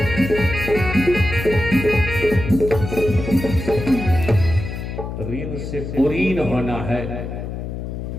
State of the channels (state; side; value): noise; left; hum, 6 dB below the sound